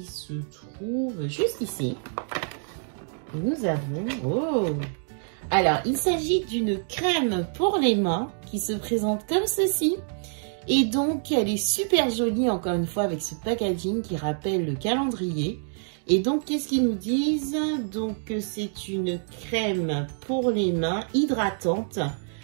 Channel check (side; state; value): left; silent; 59 dB below the other